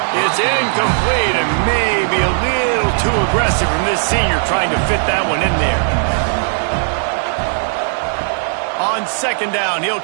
It's incomplete and maybe a little too aggressive from this senior trying to fit that one in there. On second down, he'll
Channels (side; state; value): left; silent; 58 dB below the other